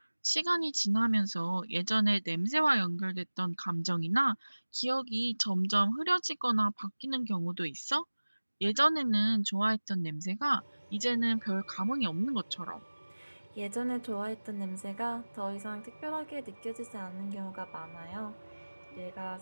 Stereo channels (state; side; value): inverted; both; correlation -1.00